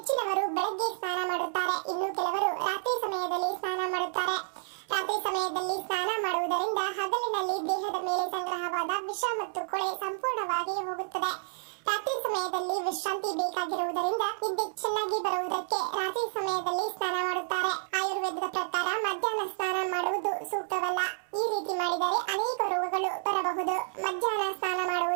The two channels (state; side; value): silent; left; 58 dB below the other